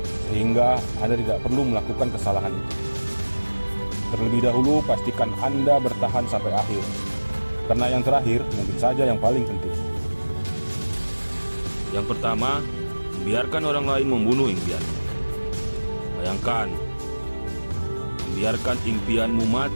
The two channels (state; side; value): inverted; both; correlation -1.00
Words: sehingga Anda tidak perlu melakukan kesalahan itu. Terlebih dahulu, pastikan Anda bertahan sampai akhir, karena yang terakhir mungkin saja yang paling penting. Yang pertama, membiarkan orang lain membunuh impianmu. Bayangkan, membiarkan impianmu